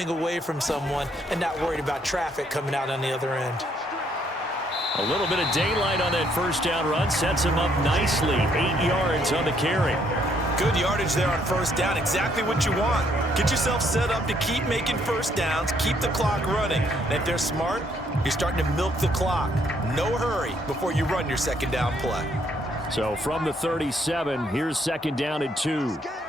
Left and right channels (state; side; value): normal; both; correlation 0.69